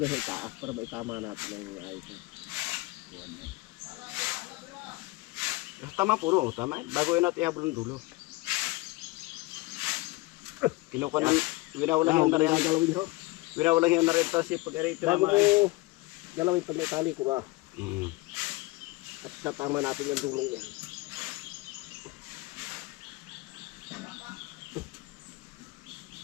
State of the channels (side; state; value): right; quieter; 21.9 dB